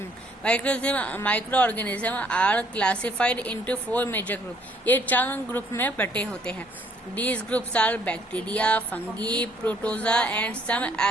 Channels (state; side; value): normal; both; correlation 0.63